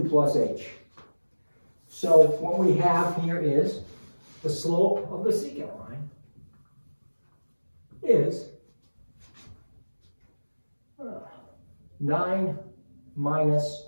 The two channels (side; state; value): both; inverted; correlation -1.00